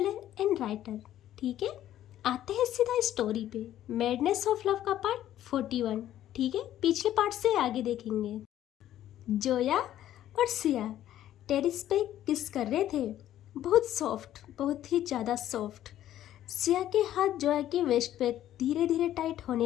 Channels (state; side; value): quieter; right; 12.3 dB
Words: and writer. ठीक है, आते हैं सीधा स्टोरी पे। मैडनेस ऑफ लव का पार्ट 41। ठीक है, पिछले पार्ट से आगे देखेंगे। जोया और सिया टेरिस पे किस कर रहे थे। बहुत सॉफ्ट, बहुत ही ज़्यादा सॉफ्ट। सिया के हाथ जोया की वेस्ट पे धीरे धीरे टाइट